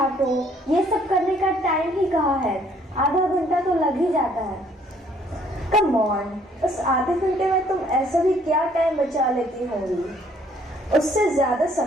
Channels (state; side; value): normal; both; correlation 0.62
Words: ये सब करने का टाइम ही कहाँ है? आधा घंटा तो लग ही जाता है। कम ऑन, उस आधे घंटे में तुम ऐसा भी क्या टाइम बचा लेती होंगी? उससे ज्यादा